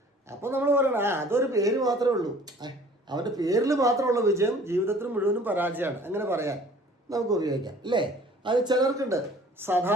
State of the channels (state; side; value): normal; both; correlation 0.51